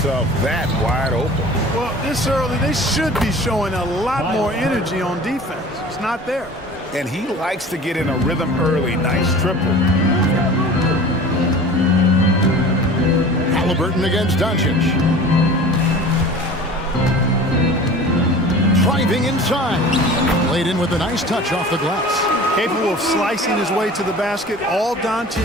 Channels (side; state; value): both; normal; correlation 0.41